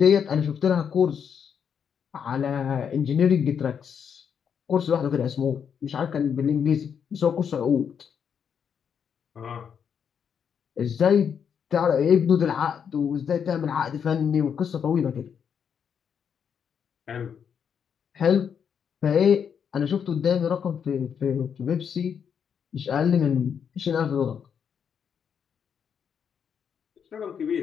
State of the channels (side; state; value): right; quieter; 7.5 dB